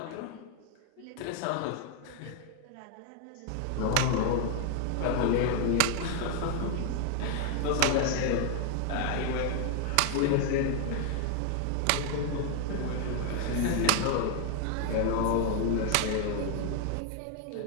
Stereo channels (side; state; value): both; different; correlation 0.00